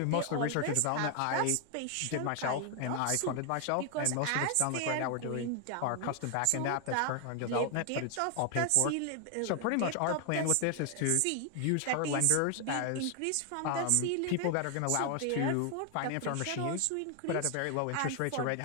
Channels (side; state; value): both; different; correlation 0.00